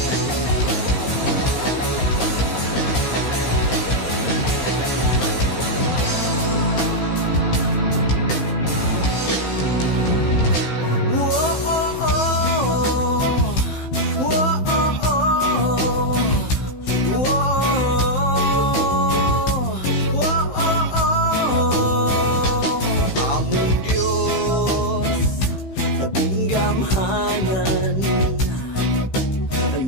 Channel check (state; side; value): late; right; 15 ms